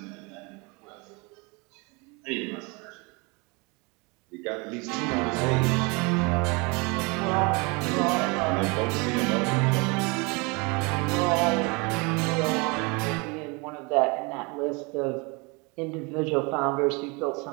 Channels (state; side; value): quieter; left; 28.8 dB